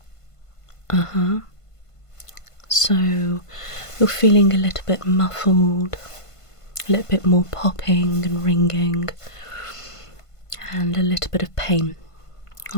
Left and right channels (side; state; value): right; late; 1.5 ms